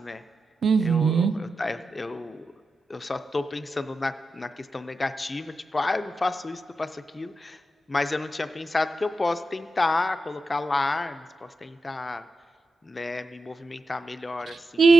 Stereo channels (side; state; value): both; normal; correlation 0.90